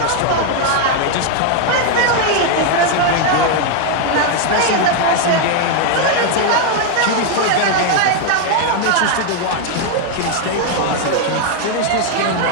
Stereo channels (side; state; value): both; different; correlation 0.00